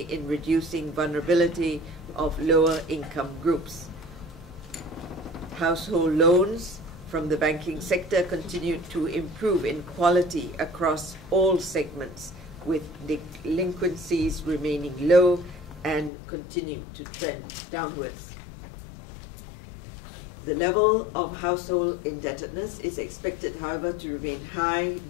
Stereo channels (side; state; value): right; drops out; at 16.1 s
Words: in reducing vulnerability of lower income groups. Household loans from the banking sector continued to improve in quality across all segments, with delinquencies remaining low and continue to trend downwards. The level of household indebtedness is expected, however, to remain high